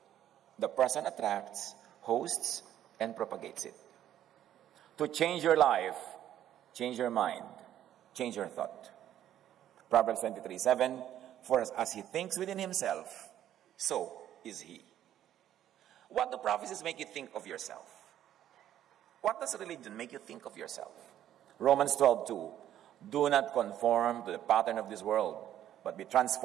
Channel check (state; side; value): quieter; left; 11.5 dB